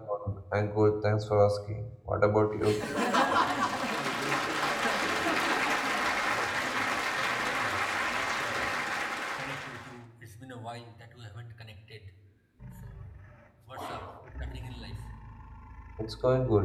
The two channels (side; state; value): both; identical; correlation 1.00